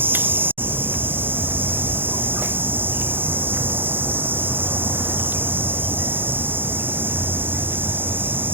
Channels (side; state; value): left; late; 0.10 ms